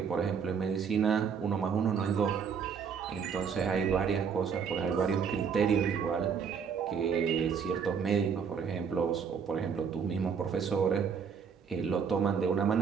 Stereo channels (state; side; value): quieter; left; 6.5 dB